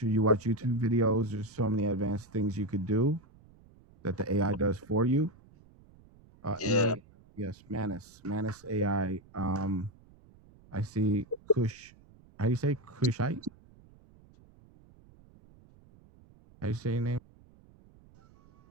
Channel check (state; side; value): noise; right; rumble, 26 dB below the sound